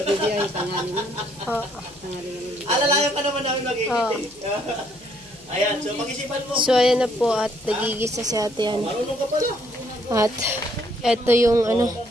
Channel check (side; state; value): left; noise; hum, 28 dB below the sound